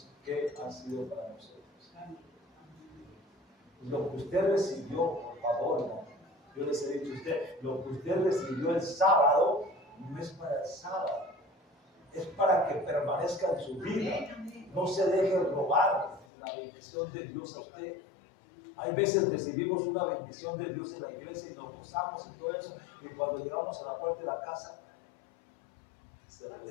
qué han sido para nosotros. Lo que usted recibió, por favor, no. Yo les he dicho a usted, lo que usted recibió el sábado, no es para el sábado, es para que permanezca en su vida. No se deje robar la bendición de Dios a usted. Hay veces recibimos una bendición de Dios en la iglesia y nos gozamos y todo eso, y cuando llegamos a la puerta de la casa se la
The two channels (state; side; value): drops out; right; at 16.2 s